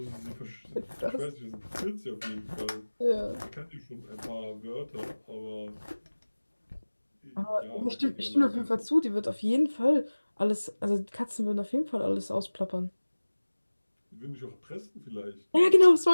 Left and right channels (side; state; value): both; inverted; correlation -1.00